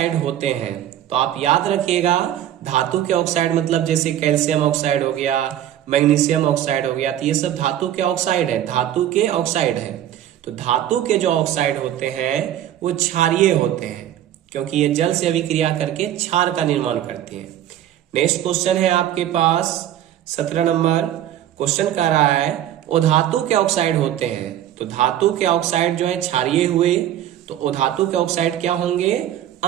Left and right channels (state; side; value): quieter; left; 11.7 dB